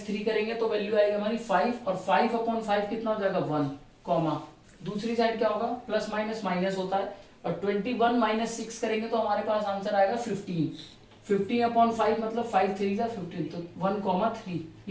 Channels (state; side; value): identical; both; correlation 1.00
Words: 3 करेंगे तो वैल्यू आएगी हमारी 5 और 5 अपॉन 5 कितना हो जाएगा 1 कॉमा दूसरी साइड क्या होगा प्लस माइनस माइनस होता है और 21 माइनस 6 करेंगे तो हमारे पास आंसर आएगा 15 अपॉन 5 मतलब 5 3 जा 15 तो 1,3।